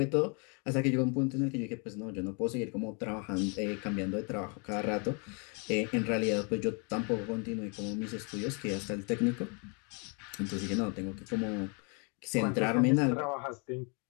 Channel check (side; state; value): right; quieter; 35.1 dB